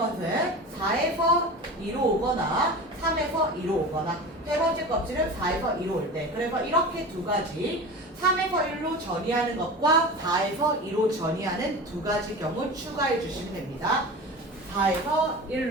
4에서 2로 오거나 3에서 2로 오거나 세 번째 껍질은 4에서 2로 올 때. 그래서 이렇게 두 가지 3에서 1로 전이하는 것과 4에서 2로 전이하는 두 가지 경우 추가해 주시면 됩니다. 3에서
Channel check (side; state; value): both; normal; correlation 0.32